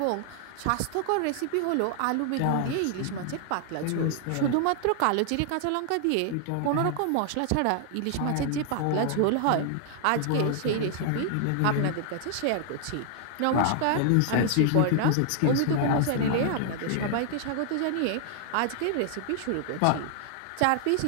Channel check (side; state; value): both; different; correlation 0.00